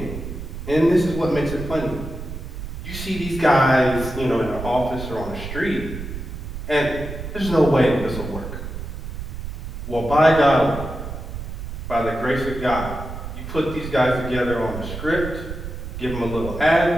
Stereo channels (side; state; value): right; noise; rumble, 8 dB below the sound